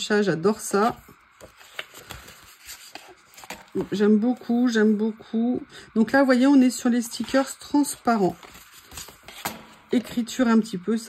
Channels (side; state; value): both; identical; correlation 1.00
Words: j'adore ça. J'aime beaucoup. J'aime beaucoup. Donc là, vous voyez, on est sur les stickers transparents. Écriture un petit peu,